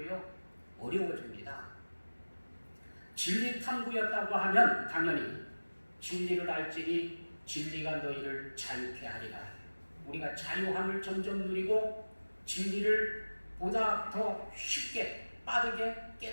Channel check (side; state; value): both; inverted; correlation -1.00